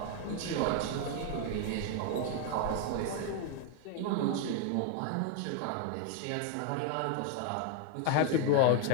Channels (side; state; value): both; different; correlation 0.01